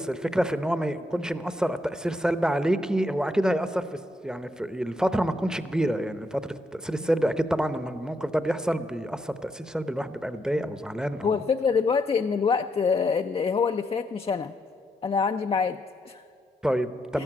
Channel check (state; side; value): normal; both; correlation 0.78